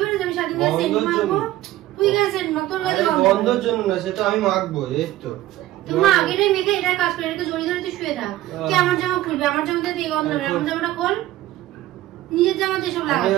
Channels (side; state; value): left; quieter; 15.2 dB